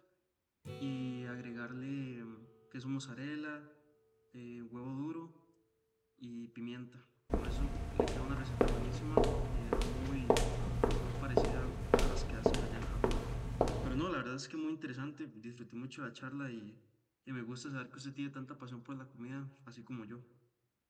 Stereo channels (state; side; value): identical; both; correlation 1.00